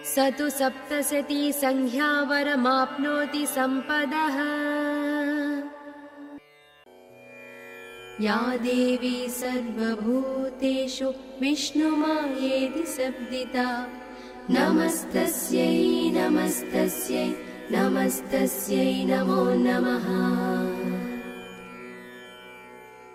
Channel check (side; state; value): both; identical; correlation 1.00